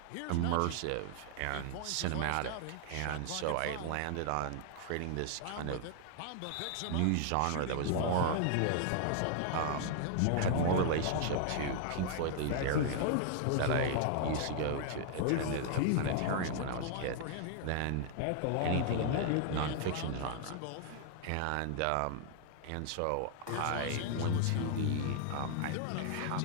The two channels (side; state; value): both; different; correlation 0.00